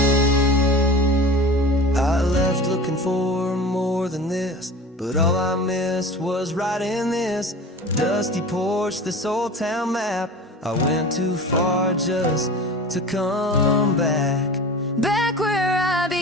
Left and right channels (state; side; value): normal; both; correlation 0.36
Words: I left looking for more than this, but all I missed was right in this dusty porch, this old town map. I went too far just to come back. Back where I